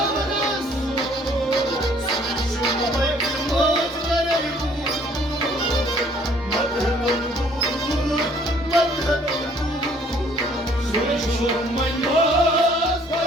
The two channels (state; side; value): normal; both; correlation 0.60